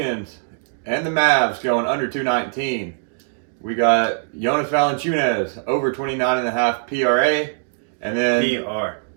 and the Mavs going under 219. We got Jonas Valanciunas over 29.5 PRA. And then PR,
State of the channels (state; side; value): silent; left; digital silence